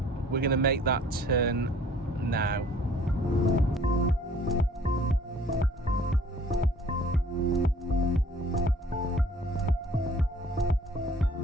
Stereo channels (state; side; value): normal; both; correlation 0.54